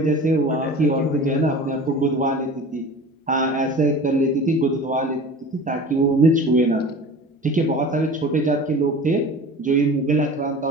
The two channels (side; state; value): both; normal; correlation 0.38